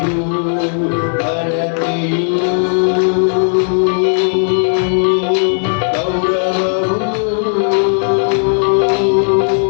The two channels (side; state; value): right; silent; digital silence